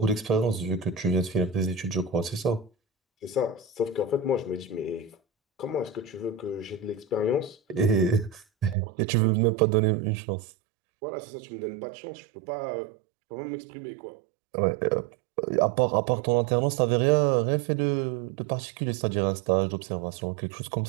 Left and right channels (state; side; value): drops out; left; at 8.8 s